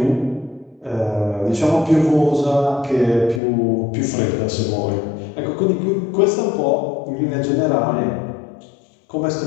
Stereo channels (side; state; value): right; drops out; at 3.4 s